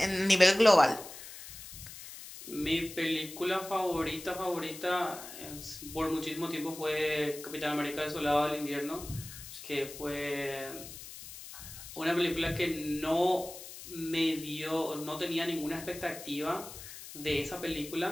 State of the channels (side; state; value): left; noise; hiss, 13 dB below the sound